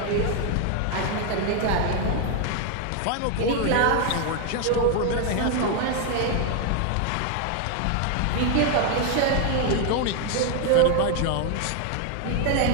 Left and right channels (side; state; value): both; different; correlation 0.01